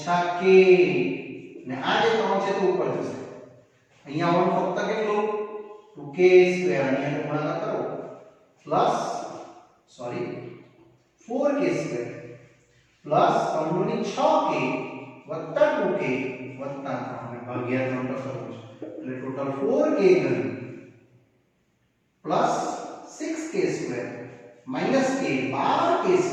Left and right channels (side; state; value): both; identical; correlation 1.00